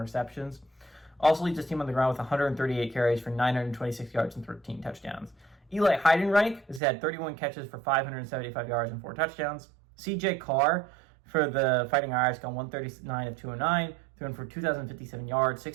Also leads his team on the ground with 138 carries for 926 yards and 13 touchdowns. Eli Heidenreich has had 31 catches for 575 yards and 4 touchdowns. CJ Carr for the Fighting Irish gone 139 of 209, thrown for 2,057 yards,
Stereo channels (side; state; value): left; drops out; at 6.8 s